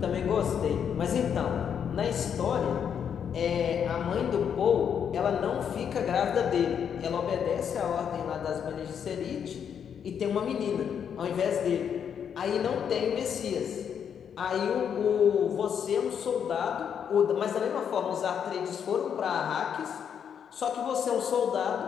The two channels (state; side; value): quieter; right; 7.9 dB